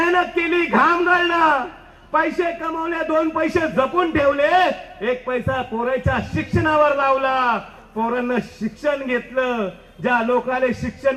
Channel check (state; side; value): identical; both; correlation 1.00